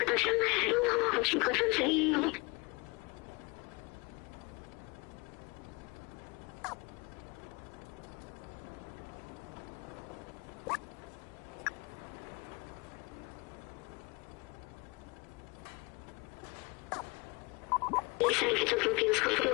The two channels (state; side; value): quieter; right; 27.4 dB